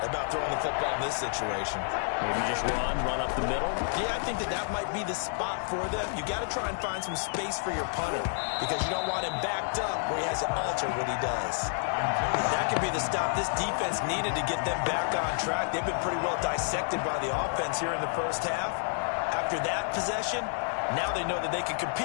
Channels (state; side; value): silent; right; digital silence